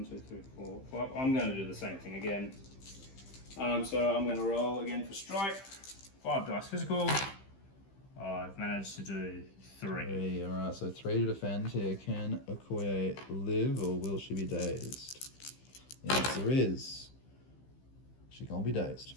2, 3, 4, 5. I'm going to do the same thing again. So I'm going to roll again for Strike. 5 dice physical. I've managed to do 3. Alright, so 3 to defend here. Can Okoye live or will she be dazed? The answer is she can't be dazed.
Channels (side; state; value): right; late; 15 ms